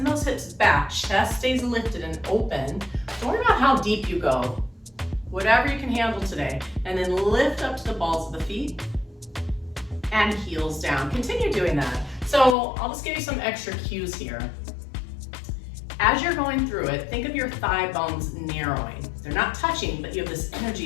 those hips back, chest stays lifted and open. Don't worry about how deep you go, whatever you can handle today. And then lift up to the balls of the feet, and heels down. Continue doing that. So I'll just give you some extra cues here. As you're going through it, think of your thigh bones narrowing. They're not touching, but you have this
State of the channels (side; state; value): right; drops out; at 12.6 s